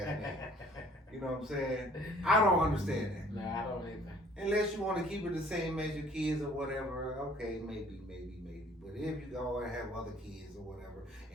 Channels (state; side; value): normal; both; correlation 0.56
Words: name. You know what I'm saying? I don't understand that. No, I don't either. Unless you want to keep it the same as your kids or whatever, okay, maybe. But if you go and have other kids or whatever,